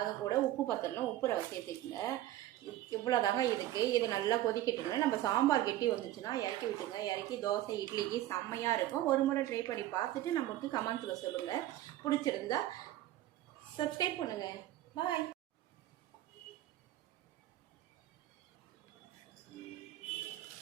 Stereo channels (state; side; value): quieter; left; 14.1 dB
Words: கூட உப்பு பத்தலாம், உப்பு சேர்த்துக்குங்க. இவ்வளோதாங்க இதுக்கு. இது நல்லா கொதிக்கிட்டுங்க. நம்ம சாம்பார் கெட்டி வந்துச்சுன்னா இறக்கி விட்டுங்க. இறக்கி தோசை, இட்லிக்கு செம்மையாக இருக்கும். ஒரு முறை ட்ரை பண்ணி பார்த்துட்டு நமக்கு கமெண்ட்ஸில் சொல்லுங்கள். பிடிச்சிருந்தா சப்ஸ்கிரைப் பண்ணுங்கள். பாய்.